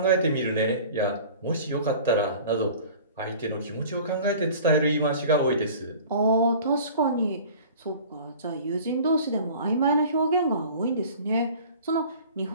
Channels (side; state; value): both; inverted; correlation -0.44